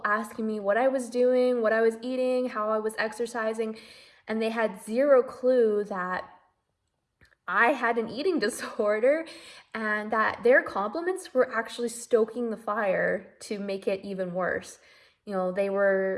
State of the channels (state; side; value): identical; both; correlation 1.00